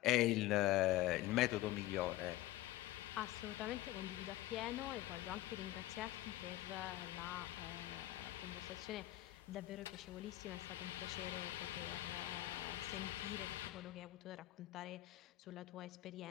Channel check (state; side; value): quieter; right; 16.1 dB